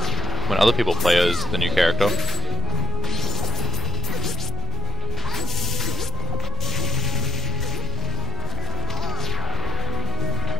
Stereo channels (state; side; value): noise; left; rumble, 6 dB below the sound